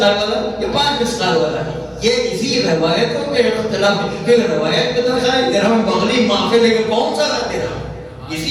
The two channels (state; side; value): identical; both; correlation 1.00